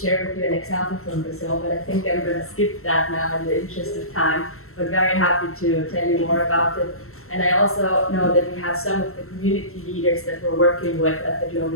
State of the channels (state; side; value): late; right; 0.63 ms